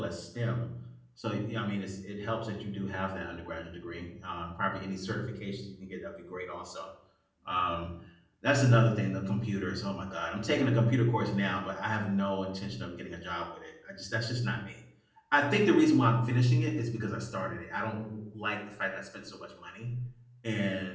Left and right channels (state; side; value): identical; both; correlation 1.00